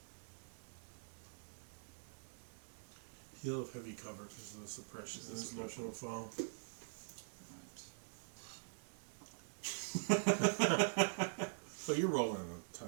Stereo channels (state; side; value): silent; left; digital silence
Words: He'll have heavy cover because of the suppression and his motion will fall. Right. But you're rolling a ton